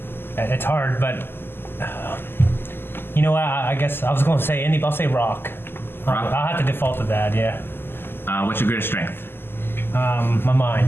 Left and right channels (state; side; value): late; right; 0.11 ms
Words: It's hard, but you know what? I guess I was going to say indie, but I'll say rock. Rock? I'll have to default to that. Yeah. What's your greatest strength? My